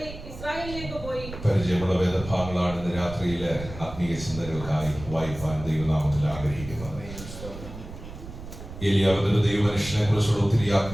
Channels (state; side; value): noise; right; rumble, 12 dB below the sound